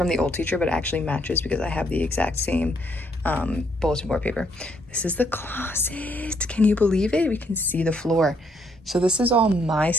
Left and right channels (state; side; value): normal; both; correlation 0.71